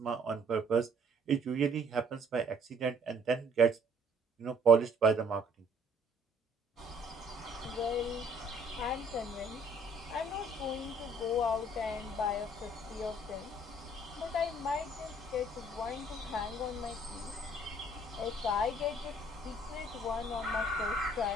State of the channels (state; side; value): normal; both; correlation 0.60